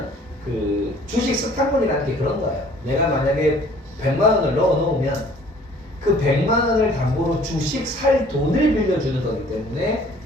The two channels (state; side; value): normal; both; correlation 0.54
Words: 그 주식 스탁문이라는 게 그런 거예요. 내가 만약에 100만 원을 넣어 놓으면 그 100만 원을 담보로 주식 살 돈을 빌려주는 거기 때문에